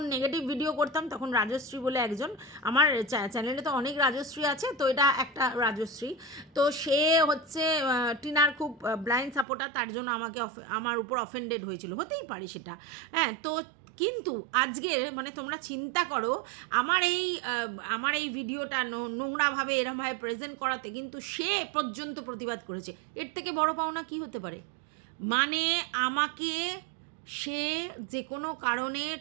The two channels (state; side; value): drops out; left; at 9.5 s